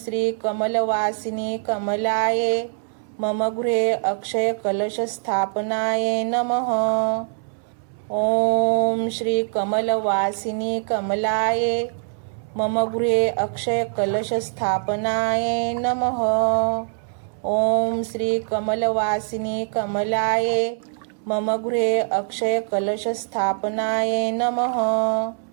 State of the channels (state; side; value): silent; left; 63 dB below the other